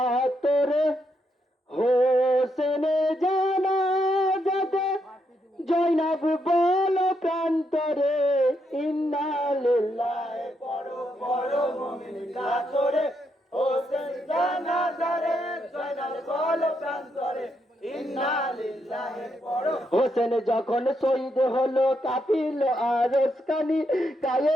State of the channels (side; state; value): both; normal; correlation 0.79